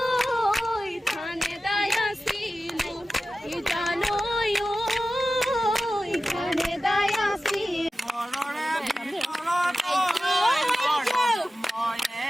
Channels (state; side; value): normal; both; correlation 0.94